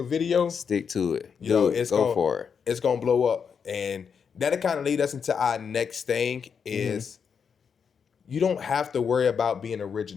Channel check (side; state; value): right; quieter; 6.6 dB